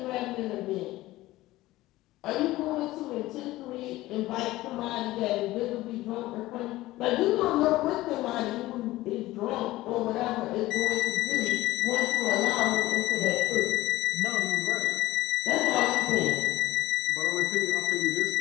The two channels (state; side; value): quieter; right; 17.3 dB